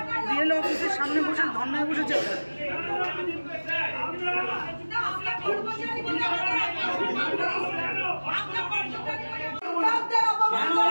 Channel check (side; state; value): both; inverted; correlation -1.00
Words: বিএলও অফিসের সামনে বসে ধর্নায় বসেছে।